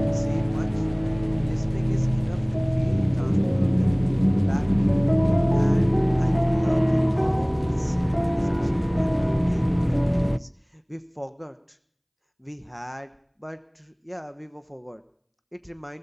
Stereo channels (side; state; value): both; identical; correlation 1.00